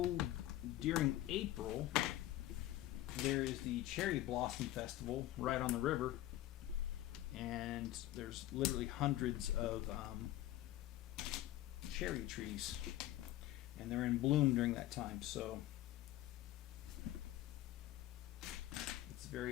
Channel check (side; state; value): right; quieter; 14.7 dB